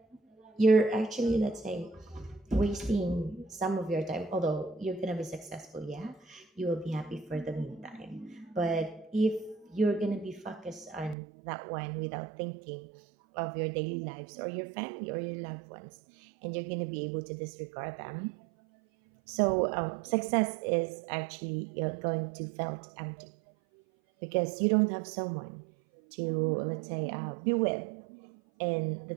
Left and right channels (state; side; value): drops out; left; at 11.2 s